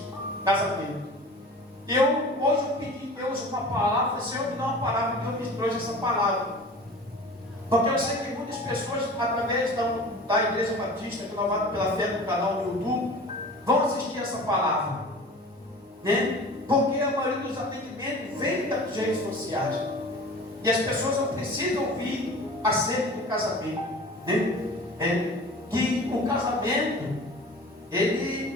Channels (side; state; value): both; normal; correlation 0.40